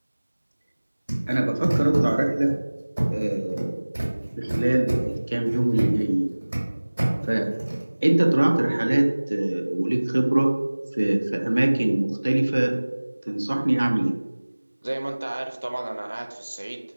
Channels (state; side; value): inverted; both; correlation -1.00